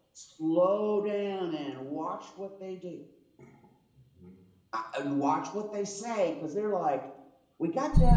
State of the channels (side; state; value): both; identical; correlation 1.00